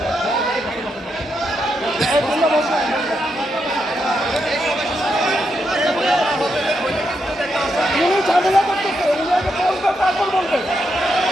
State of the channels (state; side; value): normal; both; correlation 0.82